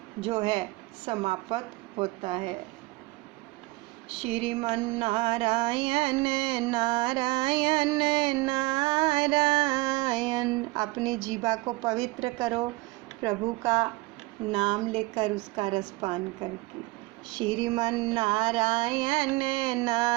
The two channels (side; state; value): left; quieter; 22.6 dB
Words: जो है समाप्त होता है। श्रीमन नारायण नारायण नारायण। अपनी जीवा को पवित्र करो प्रभु का नाम लेकर, उसका रसपान करके। श्रीमन नारायण